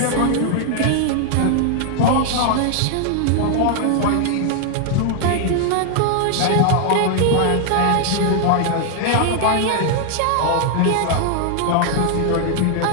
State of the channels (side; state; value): both; different; correlation 0.00